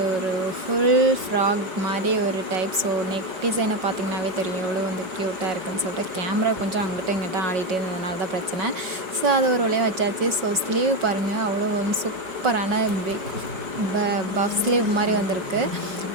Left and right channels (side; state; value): left; late; 5.4 ms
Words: ஒரு ஃபுல் ஃப்ராக் மாரி ஒரு டைப். ஸோ நெக் டிசைனை பார்த்தீங்கன்னாவே தெரியும் எவ்வளோ க்யூட்டாக இருக்குன்னு சொல்லிட்டு. கேமரா கொஞ்சம் அங்கிட்டும் இங்கிட்டும் ஆடிட்டே இருந்ததுனால தான் பிரச்சனை. ஸோ அது ஒரு வழியா வச்சாச்சு. ஸோ ஸ்லீவ் பாருங்கள், அவ்வளோ சூப்பரான பிக் பஃப் ஸ்லீவ் மாரி வந்திருக்கு.